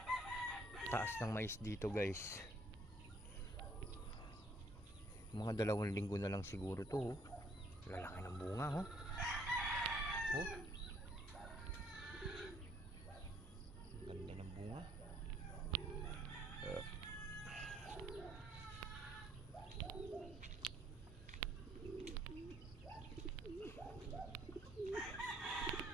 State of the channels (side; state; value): both; normal; correlation 0.65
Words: taas ng mais dito guys. Mga 2 linggo na lang siguro to. Oh. Lalaki ng bunga, oh. Oh. Ganda ng bunga.